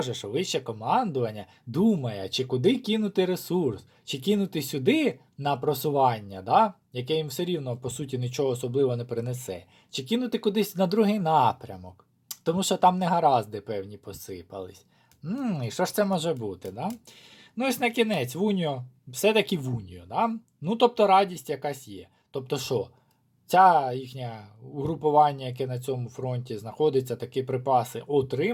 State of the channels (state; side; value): identical; both; correlation 1.00